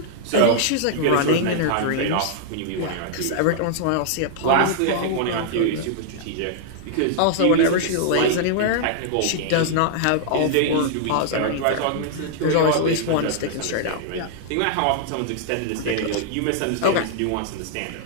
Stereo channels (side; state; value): both; different; correlation -0.01